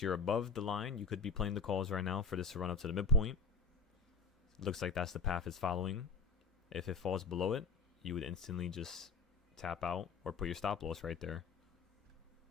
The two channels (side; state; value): right; quieter; 4.8 dB